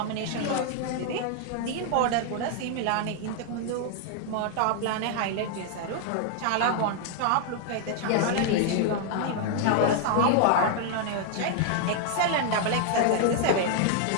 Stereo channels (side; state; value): both; different; correlation 0.00